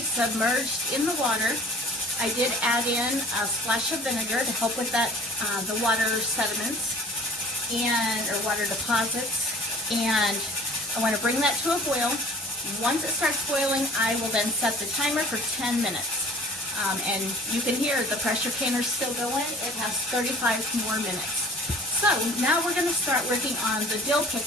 submerged in the water. I did add in a splash of vinegar to help with that, the water sediments or water deposits. And I want to bring that to a boil. Once it starts boiling, I will then set the timer for 10 minutes. And you can hear the pressure canner still going. It has 35 more minutes. So now we're going to start working on the dill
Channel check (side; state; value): both; normal; correlation 0.48